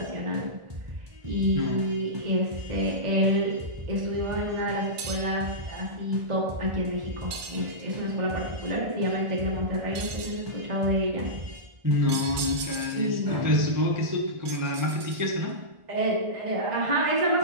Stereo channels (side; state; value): left; late; 1.4 ms